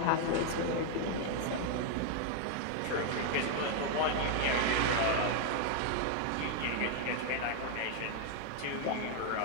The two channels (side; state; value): both; different; correlation 0.00